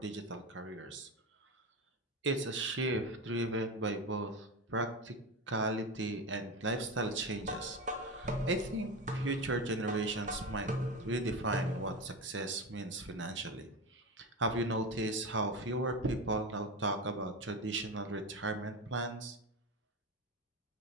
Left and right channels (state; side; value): normal; both; correlation 0.21